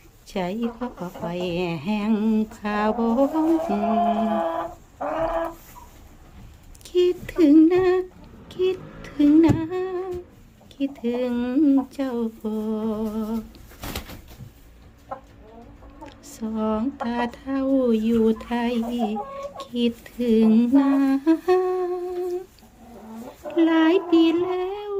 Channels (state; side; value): identical; both; correlation 1.00